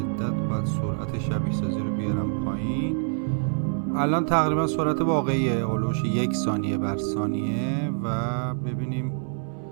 باید سرعت شبیه سازی رو بیارم پایین. الان تقریبا سرعت واقعیه اولوش 1 ثانیه بر ثانیه و ببینیم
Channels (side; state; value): left; silent; digital silence